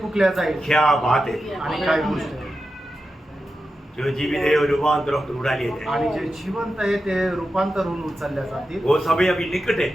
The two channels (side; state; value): both; normal; correlation 0.90